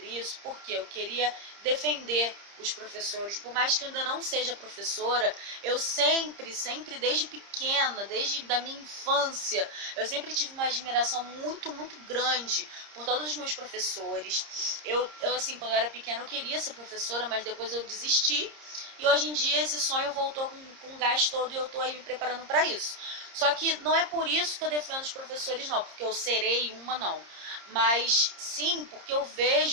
isso porque eu queria defender os professores. Por mais que eu ainda não seja professora, eu sempre, desde pequena, desde da minha infância, eu sempre tive uma admiração muito, muito grande por todos os meus professores. Eu assim, quando eu era pequena, eu queria ser professora, mas depois eu desisti. E hoje em dia esse sonho voltou com gás todo e eu estou aí me preparando para isso. Só que não é por isso que eu defendo os professores, não, porque eu serei uma, não. Mas sim, porque eu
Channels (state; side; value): late; left; 30 ms